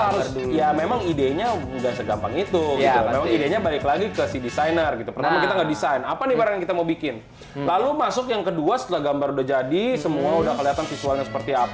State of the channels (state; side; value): identical; both; correlation 1.00